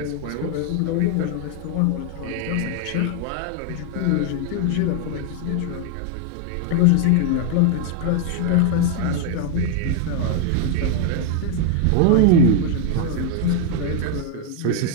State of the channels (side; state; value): both; different; correlation 0.00